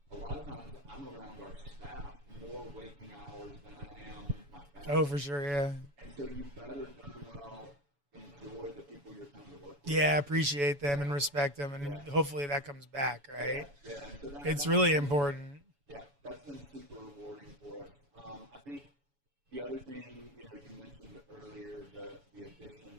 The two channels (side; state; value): left; late; 7.0 ms